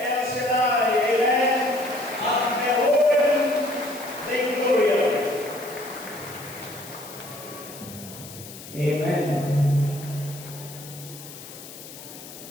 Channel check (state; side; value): noise; left; hiss, 15 dB below the sound